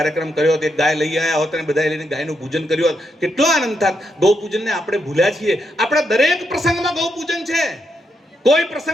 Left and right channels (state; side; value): normal; both; correlation 0.81